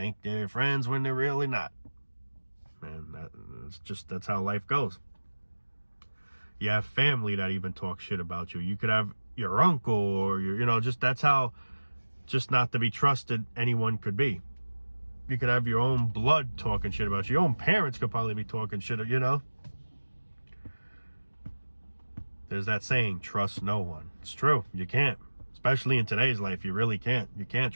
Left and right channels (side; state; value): both; inverted; correlation -1.00